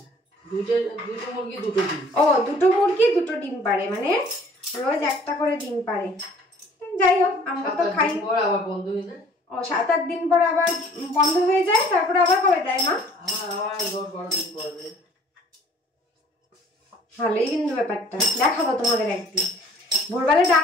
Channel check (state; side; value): normal; both; correlation 0.54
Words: দুটো মুরগি দুটো ডিম। ও, দুটো মুরগি দুটো ডিম পারে, মানে রোজ একটা করে ডিম পারে। যাই হোক, আমরা তো খাই। আবার বন্ধ হয়ে যায়। ও, 7-8 দিন পর আবার বন্ধ হয়ে যায়, তারপরে আবার কবে দেয় মা? আবার 10-12 দিন পর দেয়। ভালোই কিন্তু ব্যাপারটা, দেখাবো তোমাদের একদিন। ভোরবেলা